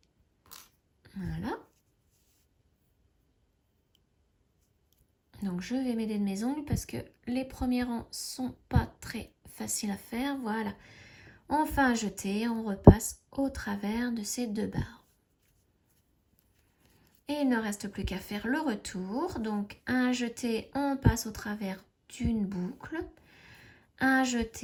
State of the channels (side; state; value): both; identical; correlation 1.00